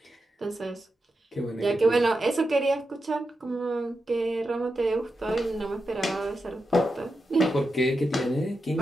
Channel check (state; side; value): normal; both; correlation 0.88